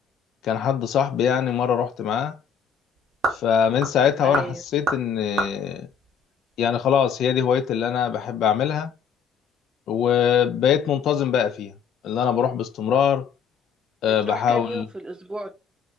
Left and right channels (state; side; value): quieter; right; 7.2 dB